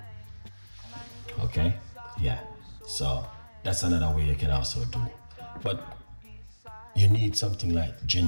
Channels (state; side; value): inverted; both; correlation -1.00